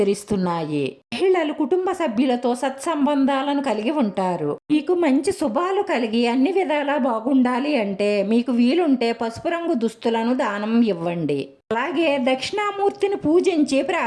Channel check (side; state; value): both; identical; correlation 1.00